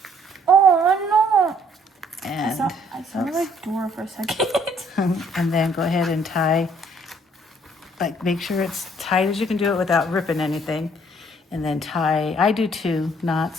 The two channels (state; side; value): normal; both; correlation 0.62